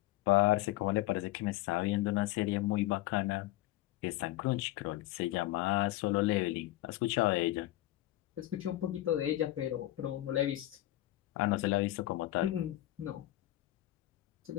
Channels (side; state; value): right; quieter; 16.3 dB